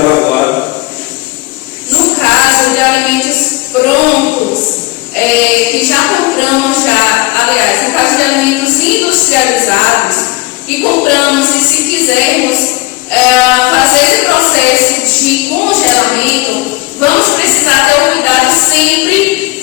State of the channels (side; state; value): right; quieter; 21.7 dB